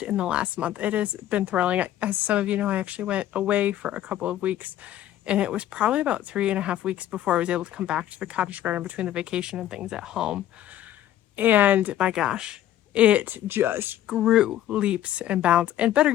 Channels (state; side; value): quieter; right; 12.4 dB